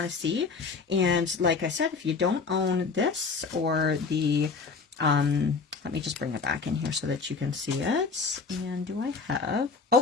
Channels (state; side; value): quieter; right; 4.7 dB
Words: to see. And like I said, if you don't own this or the let me just bring it back in here so that you can see it. And do I have...